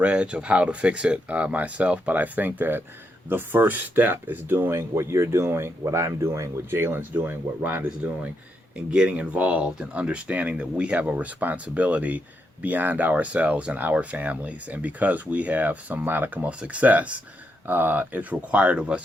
of how to fix it myself. But I think that the first step is doing what you're doing, what I'm doing, what Jalon's doing, what Rhonda's doing, and getting involved and understanding that we have a responsibility beyond ourselves and our families. And because we have some modicum of success, it's required of us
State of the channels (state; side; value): normal; both; correlation 0.81